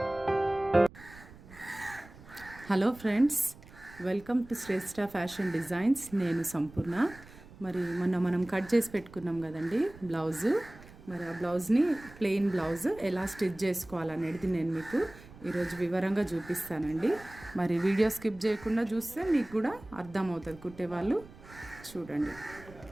friends, welcome to Shreshtha fashion designs. నేను సంపూర్ణ. మరి మొన్న మనం కట్ చేసి పెట్టుకున్నాం కదండి బ్లౌజు. మరి ఆ బ్లౌజ్ని ప్లెయిన్ బ్లౌజ్ ఎలా స్టిచ్ చేసుకోవాలనేది నేను మీకు ఈరోజు వివరంగా చూపిస్తానండి. మరి వీడియో స్కిప్ చేయకుండా చూస్తే మీకు కూడా అర్థమవుతుంది. కుట్టేవాళ్ళు చూడండి.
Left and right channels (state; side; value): noise; right; rumble, 20 dB below the sound